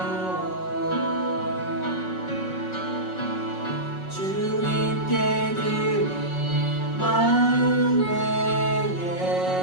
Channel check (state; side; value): late; right; 5.4 ms